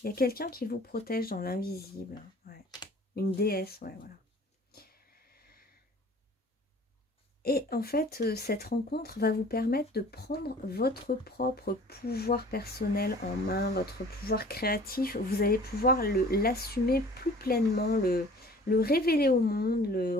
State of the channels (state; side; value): normal; both; correlation 0.48